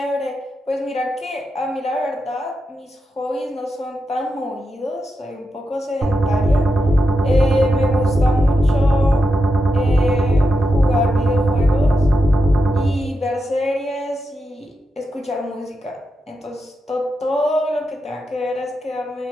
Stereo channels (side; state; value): both; normal; correlation 0.87